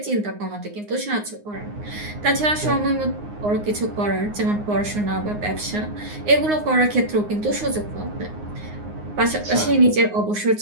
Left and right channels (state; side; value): late; left; 9.6 ms